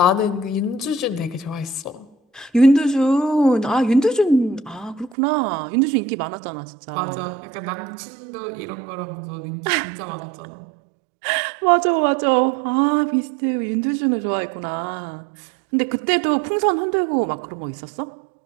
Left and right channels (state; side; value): drops out; left; at 5.2 s